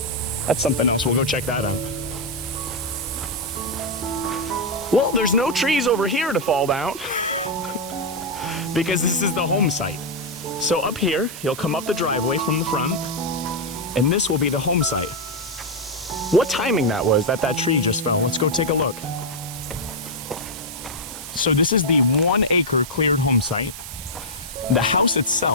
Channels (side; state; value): right; noise; hiss, 13 dB below the sound